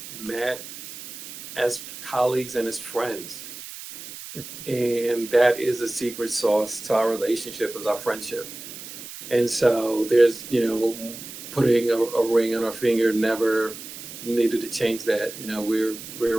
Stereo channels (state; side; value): noise; right; hiss, 12 dB below the sound